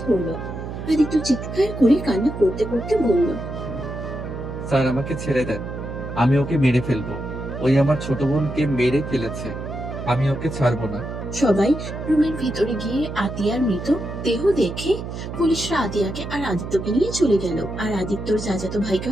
ধরলো। আদিত্য চিৎকার করে কান্না করতে করতে বলল, স্যার, আমাকে ছেড়ে দেন, আমি ওকে মেরে ফেলবো। ওই আমার ছোট বোনকে মেরে ফেলেছে, আমি ওকে ছাড়বো না। সবাই রুমের ভিতরে গিয়ে আতিয়ার মৃত দেহ দেখে পুলিশরা আতিয়াকে আর আদিত্যকে নিয়ে চলে গেল, আর আদিত্যর চাচাতো ভাইকে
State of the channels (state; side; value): noise; right; hum, 7 dB below the sound